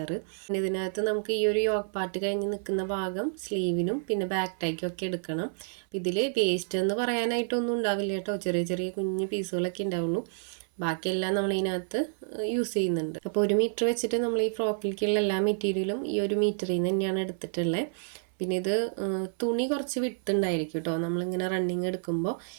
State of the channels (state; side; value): silent; left; 58 dB below the other